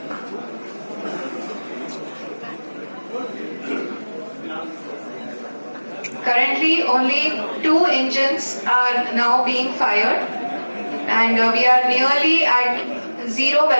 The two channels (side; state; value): both; inverted; correlation -1.00